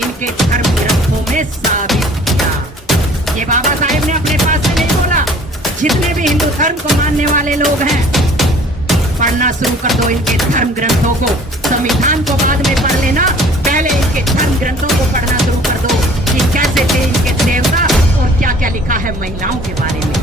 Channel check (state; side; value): normal; both; correlation 0.51